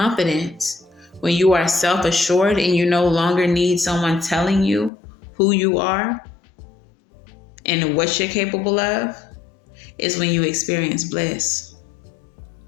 when you are self-assured and you no longer need someone telling you who you are and what you're capable of, is when you experience bliss.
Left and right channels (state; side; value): drops out; right; at 4.9 s